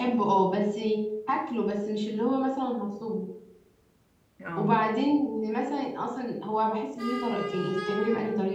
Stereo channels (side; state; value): both; identical; correlation 1.00